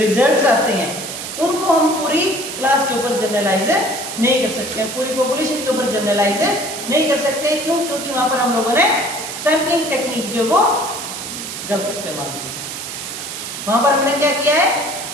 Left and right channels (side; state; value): right; noise; hiss, 7 dB below the sound